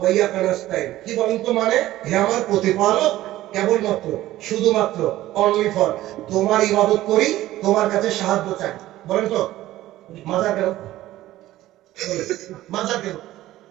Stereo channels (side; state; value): left; quieter; 15.3 dB